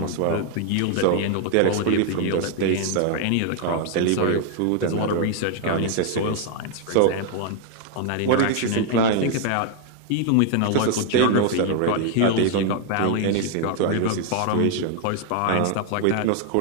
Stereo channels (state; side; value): different; both; correlation 0.00